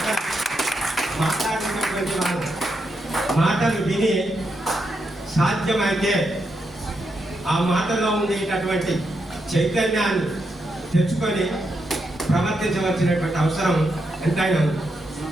మాట్లాడినటువంటి వారు మాటలు విని సాధ్యమైతే ఆ మాటలో ఉండేటటువంటి చైతన్యాన్ని తెచ్చుకొని ప్రవర్తించవలసినటువంటి అవసరం ఎంతైనా ఉంది.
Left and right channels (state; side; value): normal; both; correlation 0.82